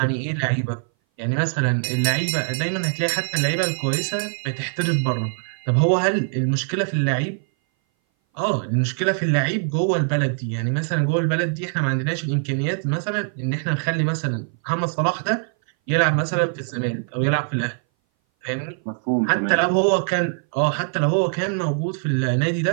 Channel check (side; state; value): left; silent; 59 dB below the other